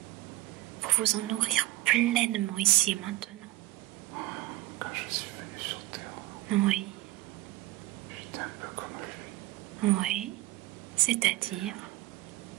pour vous en nourrir pleinement ici et maintenant. Quand je suis venu sur Terre, Oui. j'étais un peu comme lui. Oui. C'est-à-dire?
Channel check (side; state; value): left; quieter; 18.4 dB